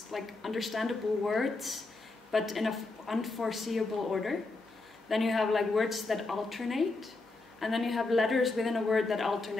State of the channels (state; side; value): quieter; right; 3.4 dB